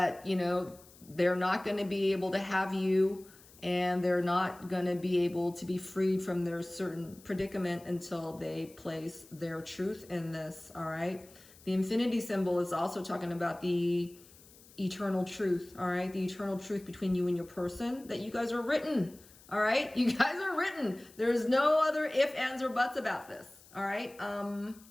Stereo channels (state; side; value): noise; left; hiss, 24 dB below the sound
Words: you know, they're not going to be able to have you, and they're not going to be able to be freed from their certain predicament until they place their truth in this, all right? The infinity symbol is also talking about the eternal truth, all right? The eternal truth between you and your person, that you guys are written, all right? You guys are written. There's no other if, ands, or buts about this, all right?